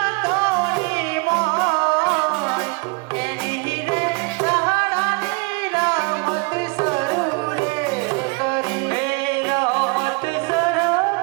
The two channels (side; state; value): left; quieter; 30.0 dB